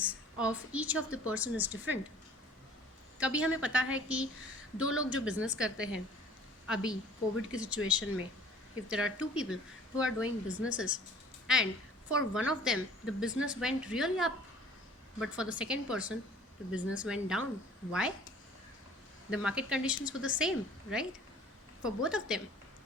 of each of the person is different. कभी हमें पता है कि दो लोग जो business करते हैं अभी कोविड की सिचुएशन में, if there are two people who are doing businesses, and for one of them the business went really up, but for the second person the business went down. Why? The market conditions were the same, right, for both of them.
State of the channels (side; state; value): both; normal; correlation 0.49